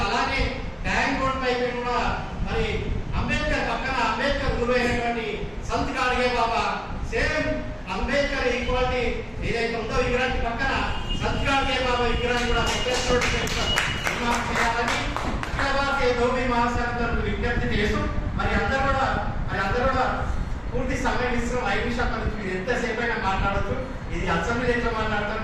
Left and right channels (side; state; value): both; identical; correlation 1.00